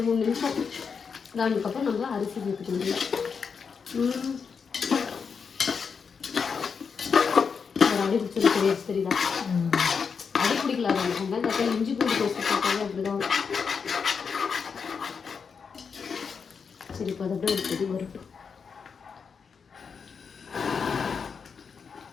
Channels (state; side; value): quieter; right; 5.9 dB